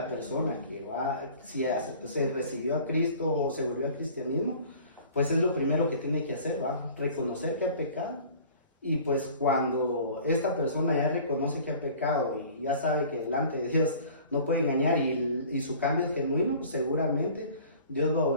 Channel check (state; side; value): inverted; both; correlation -0.47